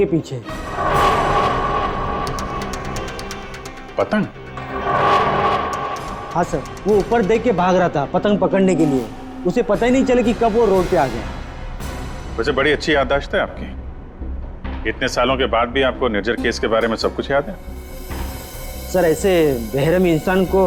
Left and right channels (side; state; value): both; identical; correlation 1.00